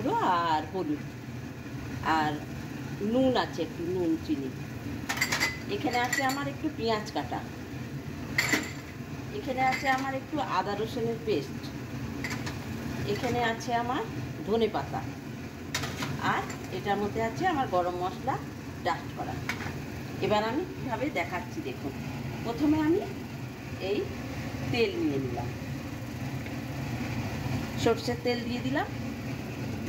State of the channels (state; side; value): identical; both; correlation 1.00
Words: আর হলুদ, আর নুন আছে একটু, নুন চিনি। এখানে আছে আমার একটু পেঁয়াজ কাটা, এখানে আছে আমার একটু আদা রসুনের পেস্ট, এখানে আছে আমার ধনে পাতা, আর এটার মধ্যে আছে আমার গরম মশলা ডাস্ট করা। এবার আমি কীভাবে দেখাচ্ছি দেখুন। প্রথমে আমি এই তেল নিয়ে নিলাম, সরষের তেল দিয়ে দিলাম।